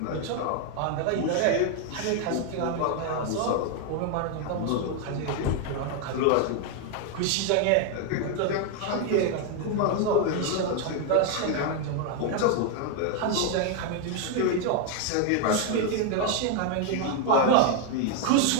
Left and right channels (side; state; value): both; different; correlation 0.01